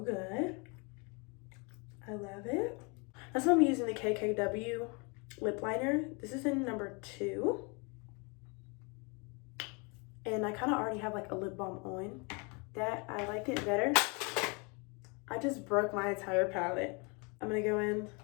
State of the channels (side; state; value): right; quieter; 31.6 dB